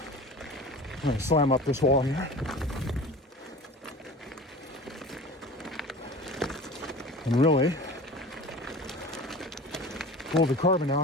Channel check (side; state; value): both; normal; correlation 0.38